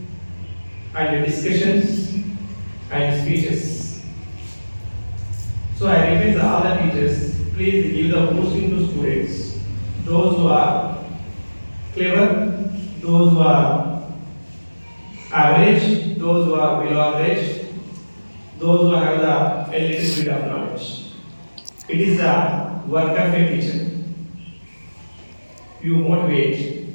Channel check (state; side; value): inverted; both; correlation -1.00